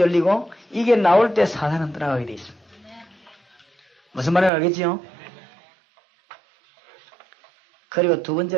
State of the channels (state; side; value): drops out; left; at 4.5 s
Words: 이게 나올 때 사단은 떠나가게 되어 있습니다. 무슨 말인지 알겠지요? 그리고 두